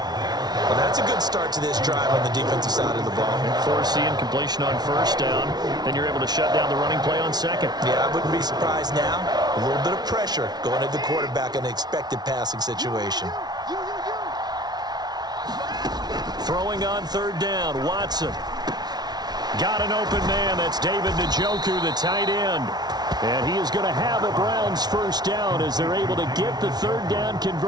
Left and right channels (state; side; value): late; left; 0.19 ms